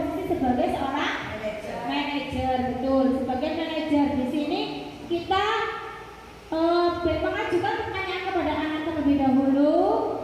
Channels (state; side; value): identical; both; correlation 1.00